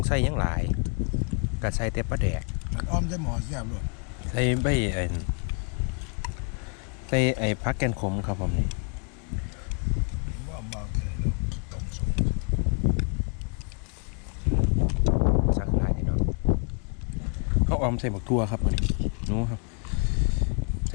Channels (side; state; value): right; quieter; 37.2 dB